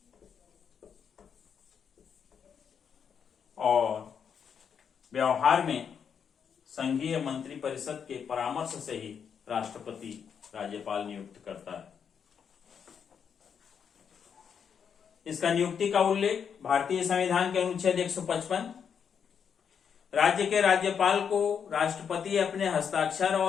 और व्यवहार में संघीय मंत्रिपरिषद के परामर्श से ही राष्ट्रपति राज्यपाल नियुक्त करता है। इसका नियुक्ति का उल्लेख भारतीय संविधान के अनुच्छेद 155, राज्य के राज्यपाल को राष्ट्रपति अपने हस्ताक्षर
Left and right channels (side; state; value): right; quieter; 7.2 dB